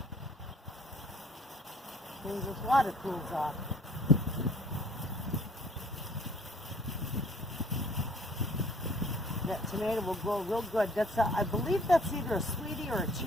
As soon as this water cools off. That tomato will grow real good. I believe that's either a sweetie or a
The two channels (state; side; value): normal; both; correlation 0.56